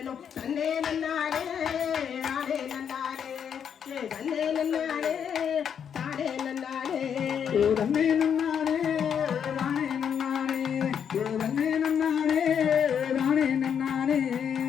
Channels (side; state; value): right; quieter; 7.9 dB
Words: தன்னே நன்னாரே நாடே நன்னாரே தன்னே நன்னாரே தாடே நன்னாரே தன்னே நன்னாரே ராணே நன்னாரே தன்னே நன்னாரே ராணே நன்னாரே